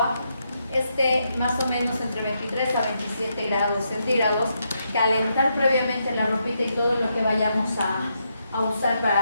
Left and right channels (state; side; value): inverted; both; correlation -0.80